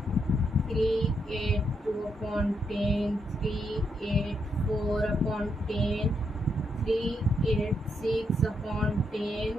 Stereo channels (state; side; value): normal; both; correlation 0.79